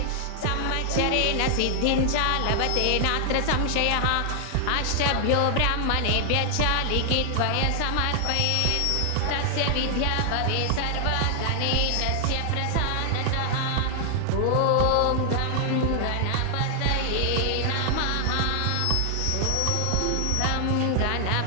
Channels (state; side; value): different; both; correlation 0.00